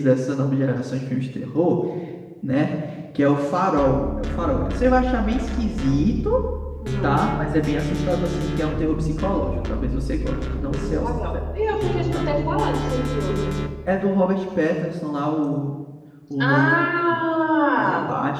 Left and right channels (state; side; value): identical; both; correlation 1.00